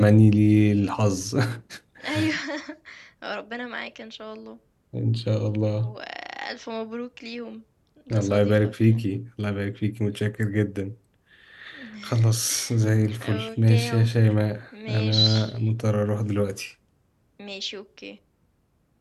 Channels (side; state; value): both; identical; correlation 1.00